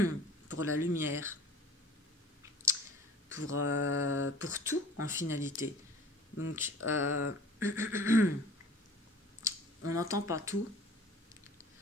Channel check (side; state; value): both; normal; correlation 0.46